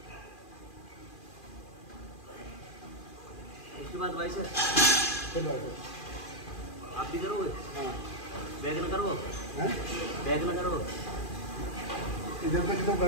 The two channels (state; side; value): late; right; 2.4 ms